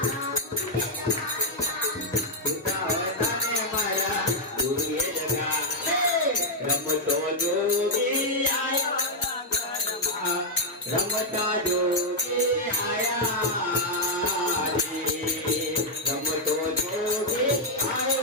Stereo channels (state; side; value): normal; both; correlation -0.01